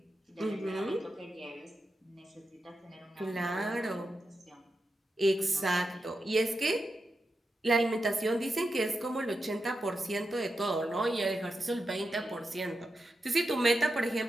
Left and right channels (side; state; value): both; normal; correlation 0.88